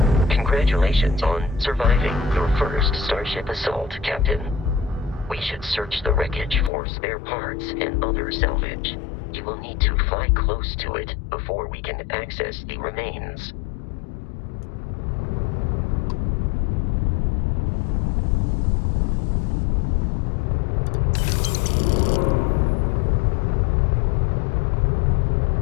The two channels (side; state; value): right; drops out; at 6.7 s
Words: Congratulations on surviving your first Starship assault, Captain. We should search the wreckage for spare parts and other salvage. You will need to fly close to it before we can access the remains.